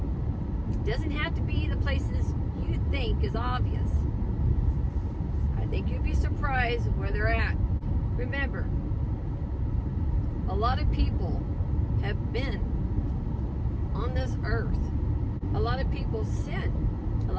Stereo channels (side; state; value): both; identical; correlation 1.00